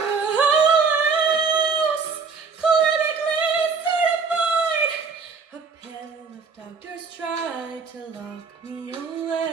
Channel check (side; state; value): left; quieter; 5.1 dB